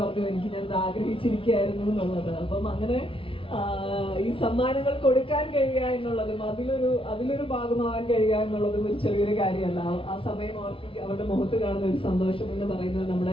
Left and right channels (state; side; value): late; right; 0.26 ms